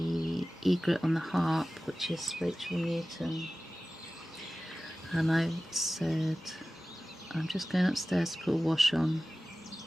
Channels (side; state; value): both; normal; correlation 0.96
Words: egret on the harp, which is Rachel Newton, and I said I'm just going upstairs to put a wash on.